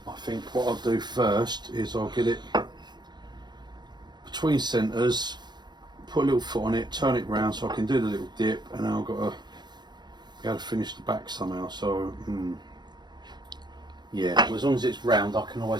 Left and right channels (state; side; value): late; left; 0.21 ms